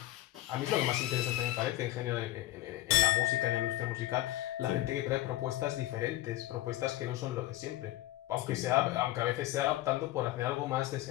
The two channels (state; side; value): quieter; right; 15.6 dB